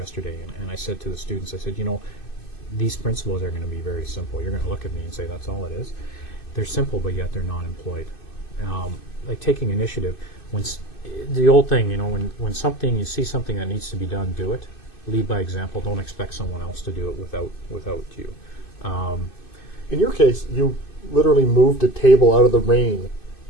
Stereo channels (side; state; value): right; late; 2.6 ms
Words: and I said to the students, I said, you know, these principles are going to be very simple. You're going to look at me and say, that's all it is. They're simple, but yet they're not employed. Like taking initiative, the old thing, you know, when you see something that needs to be done, do it. Lead by example. Don't expect someone else to do it without you. In your case, you literally moved a table out of the rain,